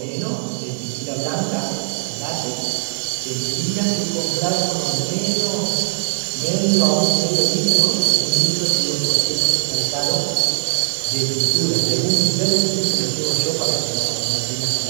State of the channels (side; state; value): left; silent; digital silence